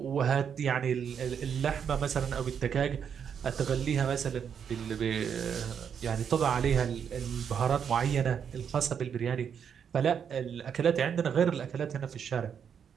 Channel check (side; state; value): left; quieter; 7.6 dB